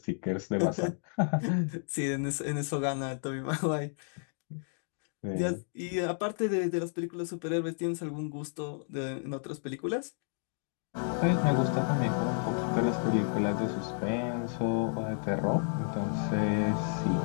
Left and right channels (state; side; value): silent; right; 57 dB below the other